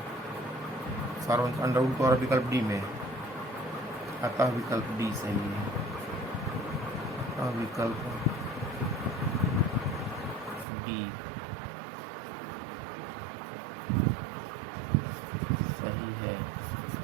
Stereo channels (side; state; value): left; drops out; at 10.7 s